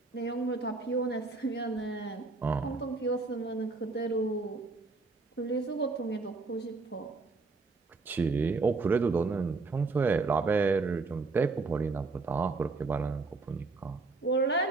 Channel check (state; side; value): quieter; left; 3.9 dB